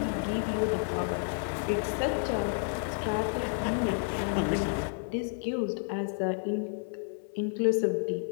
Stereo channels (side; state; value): right; silent; 57 dB below the other